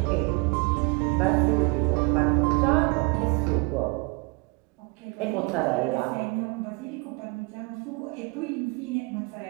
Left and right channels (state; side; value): quieter; left; 29.1 dB